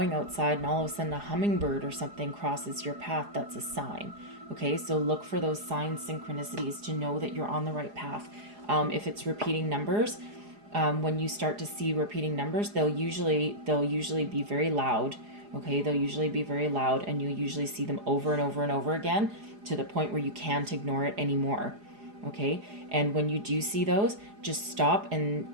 outside and all of a sudden a hummingbird or something crosses your path, that's a sign. Okay, so look for those signs, synchronicities to know that you're on the right path. If it's repeating numbers, when you start to see repeating numbers, they'll usually be very loud. Okay, they'll usually be very loud, and you'll usually see them over and over and over again to the point where you can't ignore it anymore. Okay, and when you do see those, just stop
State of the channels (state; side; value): late; left; 4.8 ms